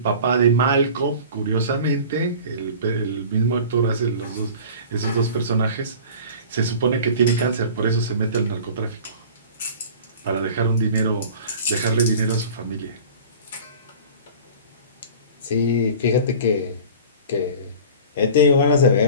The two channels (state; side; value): inverted; both; correlation -0.41